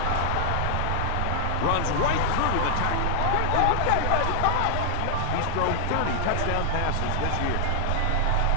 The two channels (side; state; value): both; different; correlation -0.01